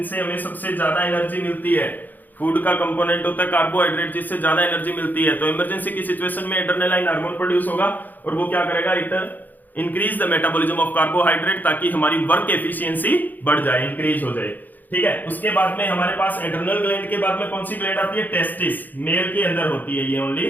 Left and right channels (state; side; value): late; right; 0.085 ms